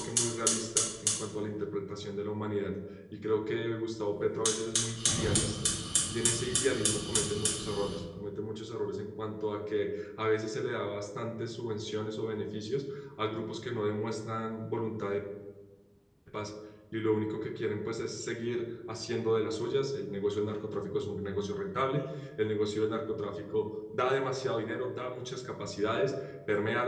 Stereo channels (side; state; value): both; identical; correlation 1.00